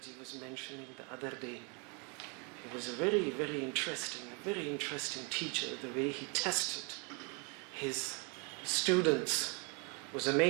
was mentioning the other day, he was a very interesting teacher. The way he tested his students was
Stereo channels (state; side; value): quieter; left; 34.4 dB